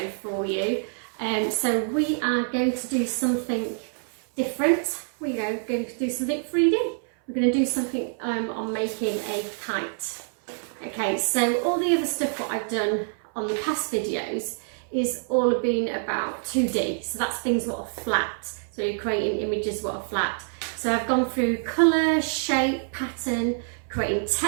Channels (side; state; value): left; silent; 59 dB below the other